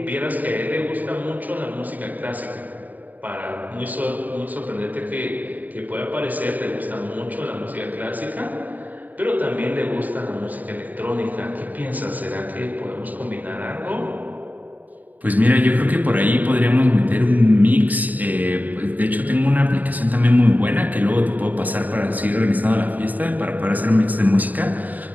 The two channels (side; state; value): left; late; 0.081 ms